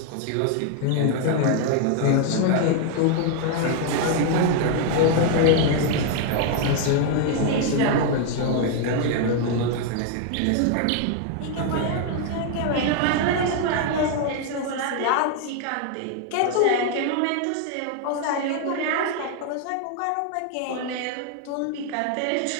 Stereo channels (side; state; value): both; different; correlation 0.00